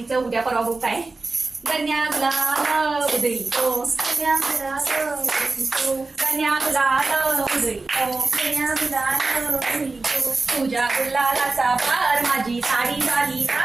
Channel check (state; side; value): quieter; left; 3.6 dB